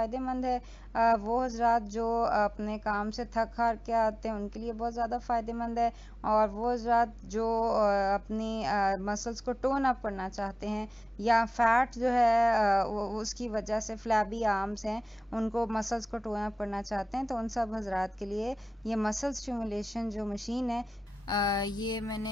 है। वो हजरात जो अपने काम से थक हार के आते हैं उनके लिए बहुत ज़्यादा फ़ायदेमंद है, और वो हजरात जो अपनी मसल्स को टोन अप करना चाहते हैं, या फैट जो है उसकी वजह से फ्लैबी आर्म्स हैं उनको मसल्स को टोन अप करना चाहते हैं, तो उन सब हजरात के लिए ये मसल स्टिमुलेशन जो मशीन है ये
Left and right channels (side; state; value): both; normal; correlation 0.97